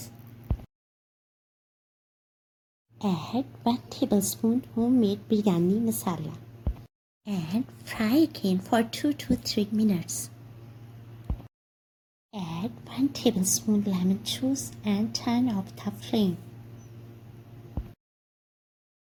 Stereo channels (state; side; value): identical; both; correlation 1.00